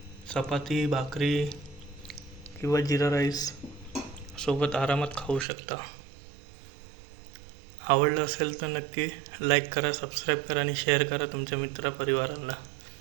चपाती, भाकरी किंवा जिरा राईस सोबत आरामात खाऊ शकता. आवडलं असेल तर नक्की लाईक करा, सबस्क्राईब करा आणि शेअर करा तुमच्या मित्रपरिवारांना.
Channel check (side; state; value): left; drops out; at 5.5 s